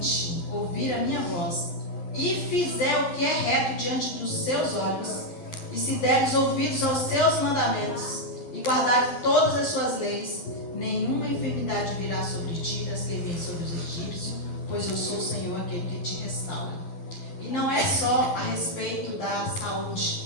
ouvirem a minha voz, e fizer o que é reto diante dos seus olhos, e se deres ouvidos aos seus mandamentos, e guardarem todas as suas leis, nenhuma enfermidade virá sobre ti, das que vêm sobre os egípcios, pois eu sou o Senhor, aquele que te restaura. E não é só a respeito da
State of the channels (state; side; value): late; right; 12 ms